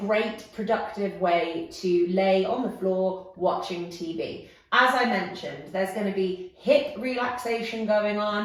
productive way to lay on the floor watching TV. As I mentioned, there's going to be hip relaxation going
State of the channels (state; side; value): identical; both; correlation 1.00